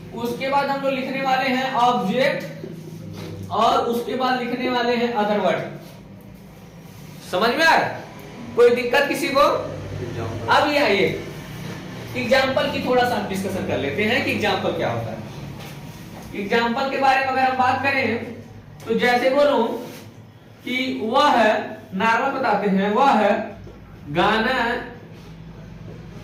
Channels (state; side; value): identical; both; correlation 1.00